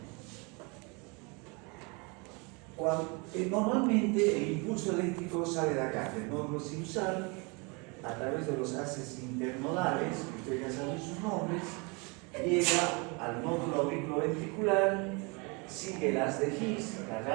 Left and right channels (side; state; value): left; quieter; 30.3 dB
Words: Normalmente el impulso eléctrico sale de acá, del nódulo sinusal, a través de los haces internodales, que ustedes ya saben sus nombres, llega al nódulo auriculoventricular, sigue el haz de His, la